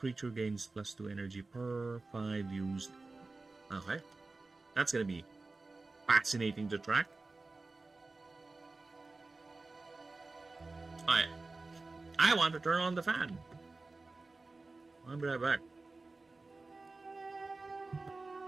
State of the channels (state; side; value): quieter; left; 3.5 dB